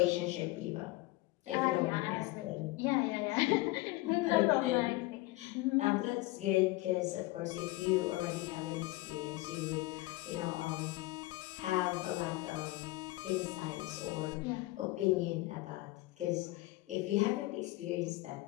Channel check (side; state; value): right; quieter; 20.1 dB